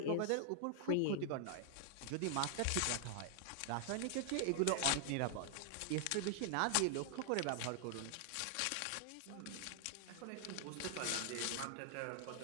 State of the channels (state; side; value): different; both; correlation 0.00